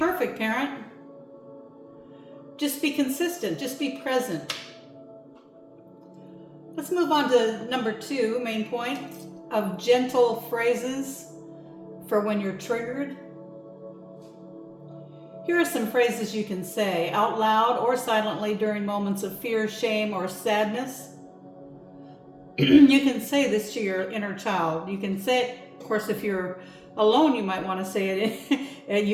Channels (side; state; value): both; identical; correlation 1.00